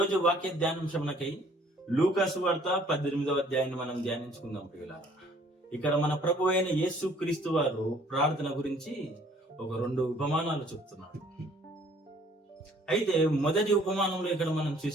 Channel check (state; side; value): normal; both; correlation 0.58